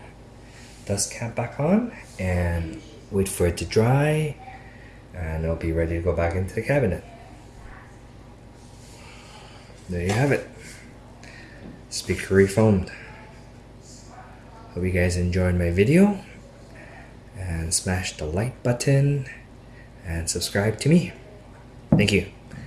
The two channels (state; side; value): identical; both; correlation 1.00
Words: dust cap back on and wait for it to dry, and it'll be ready to go back into the cabinet. There you have it. Speaker refoamed. Hope you guys enjoyed my video, and smash the like button and subscribe to me. Thank you.